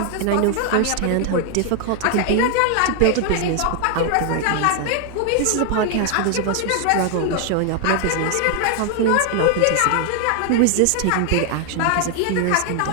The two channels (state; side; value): different; both; correlation 0.00